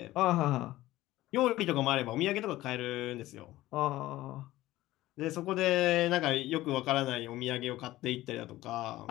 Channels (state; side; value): quieter; right; 16.5 dB